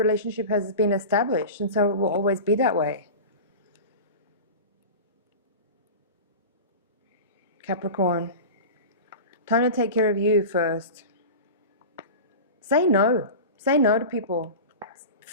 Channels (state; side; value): inverted; both; correlation -0.30